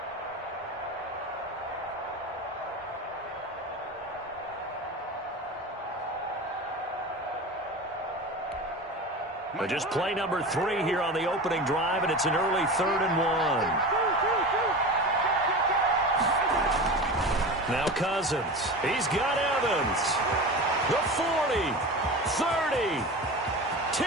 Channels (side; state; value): both; normal; correlation 0.30